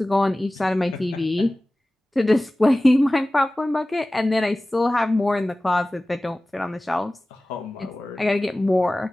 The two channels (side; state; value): both; normal; correlation 0.97